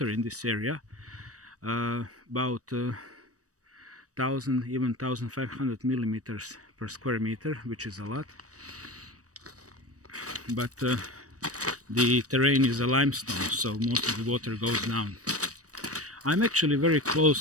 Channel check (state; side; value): late; left; 0.66 ms